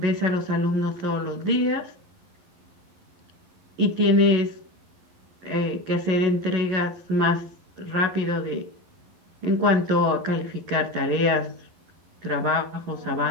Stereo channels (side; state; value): left; late; 11 ms